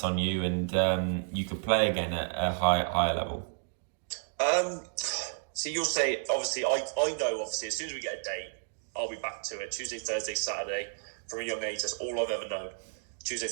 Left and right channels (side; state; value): left; silent; digital silence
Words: on you, and you could play again at a higher level? So you'll say, obviously, I know, obviously, as soon as we get a date, I'll be back to it. Tuesday, Thursday, Saturday. From a young age, that's all I've ever known. Tuesday,